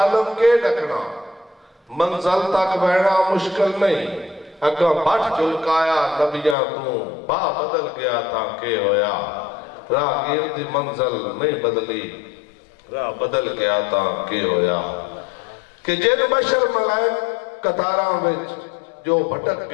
کے ڈکنا منزل تک بہنا مشکل نہیں، اگاں بھٹ جلکایا نبیاں تو با بدل گیا تھا کہ ہویا، راہ گیرتی منزل نہیں بدلی، راہ بدل گیا تھا کہ ہویا، کہ جن بشر ملائک قطاراں وچ جو بھٹک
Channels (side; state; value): right; drops out; at 6.6 s